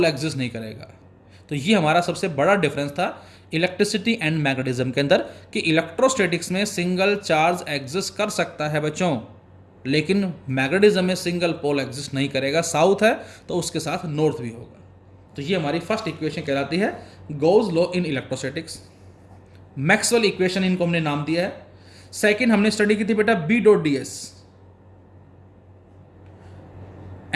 एग्जिस्ट नहीं करेगा. तो ये हमारा सबसे बड़ा डिफरेंस था इलेक्ट्रिसिटी एंड मैग्नेटिज्म के अंदर कि इलेक्ट्रोस्टैटिक्स में सिंगल चार्ज एग्जिस्ट कर सकता है बच्चों, लेकिन मैग्नेटिज्म में सिंगल पोल एग्जिस्ट नहीं करेगा. साउथ है तो उसके साथ नॉर्थ भी होगा. तो ये हमारी फर्स्ट इक्वेशन कहलाती है Gauss law in electrostatics. Maxwell equation इनको हमने नाम दिया है. सेकंड हमने स्टडी की थी बेटा B dot D S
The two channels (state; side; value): identical; both; correlation 1.00